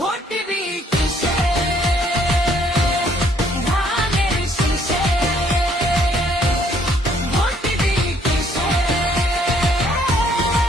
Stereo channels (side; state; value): both; normal; correlation 0.65